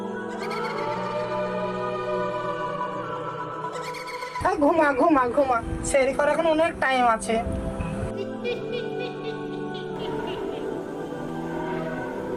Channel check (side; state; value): both; identical; correlation 1.00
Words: ঘুমা ঘুমা ঘুমা, সেহরি করার এখন অনেক টাইম আছে।